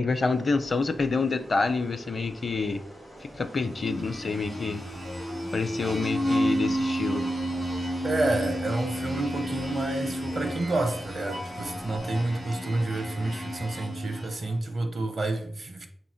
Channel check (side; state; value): both; normal; correlation 0.89